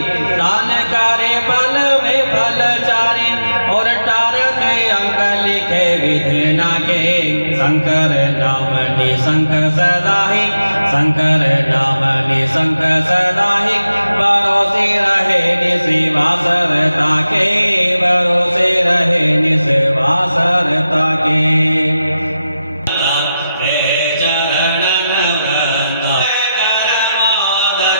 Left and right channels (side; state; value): both; inverted; correlation -0.91